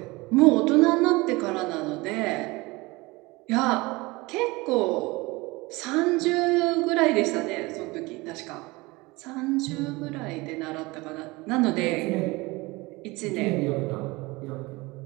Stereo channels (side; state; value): left; quieter; 23.0 dB